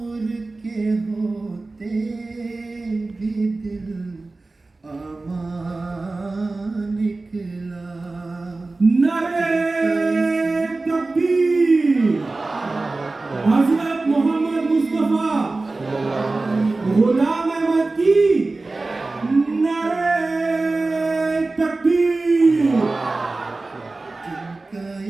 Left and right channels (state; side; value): quieter; left; 3.4 dB